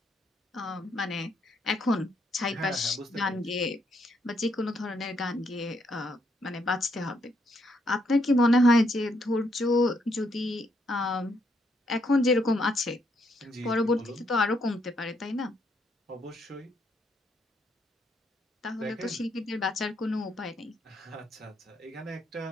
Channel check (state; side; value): normal; both; correlation 0.75